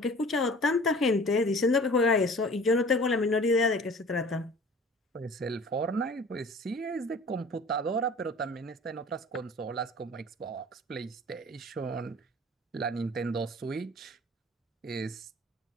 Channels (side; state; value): both; normal; correlation 0.45